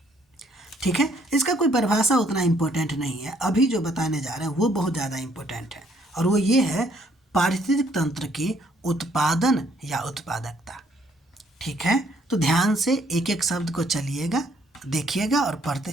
ठीक है, इसका कोई परिभाषा उतना इम्पोर्टेंट नहीं है, अभी जो बताने जा रहे हैं वो बहुत ज़्यादा इम्पोर्टेंट है और वो ये है पारिस्थितिक तंत्र की उत्पादन या उत्पादकता। ठीक है, तो ध्यान से एक एक शब्द को चलिएगा, देखिएगा और पढ़ते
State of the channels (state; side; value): normal; both; correlation 0.66